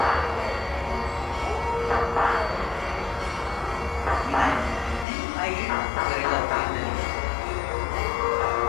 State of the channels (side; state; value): right; drops out; at 5.1 s